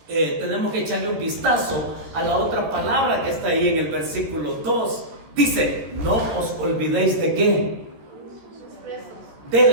tenemos que echarle un vistazo a la otra palabra que está ahí en el versículo 2. Dice, no os olvidéis de qué. De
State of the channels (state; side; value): late; left; 14 ms